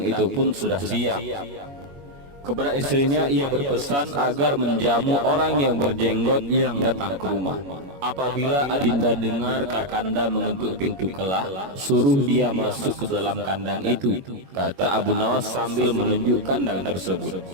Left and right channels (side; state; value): left; late; 21 ms